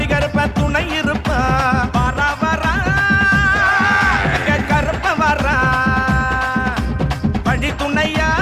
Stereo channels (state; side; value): identical; both; correlation 1.00